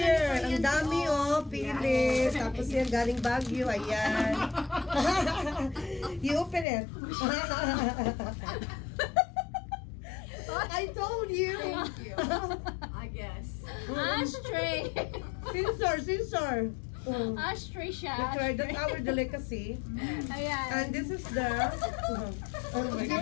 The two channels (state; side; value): drops out; right; at 6.7 s